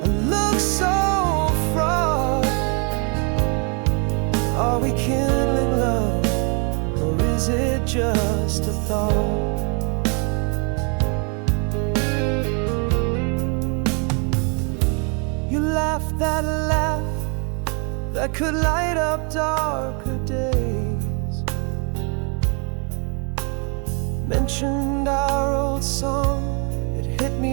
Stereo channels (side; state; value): left; quieter; 36.0 dB